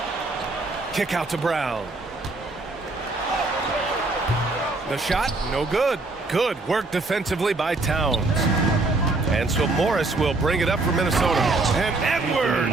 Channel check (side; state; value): left; quieter; 3.3 dB